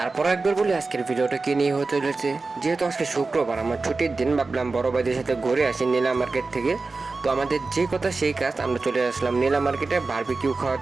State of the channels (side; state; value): left; quieter; 3.8 dB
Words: একবার বলি আজকের ভিডিওটা কি নিয়ে হতে চলেছে। যেহেতু আজকে শুক্রবার, আমার ছুটির দিন, ভাবলাম বড় ভাইদের সাথে ঘুরে আসি নীলা মার্কেট থেকে। তো আমাদের যে কথা সেই কাজ, আমরা চলে আসলাম নীলা মার্কেটে বারবিকিউ খাওয়ার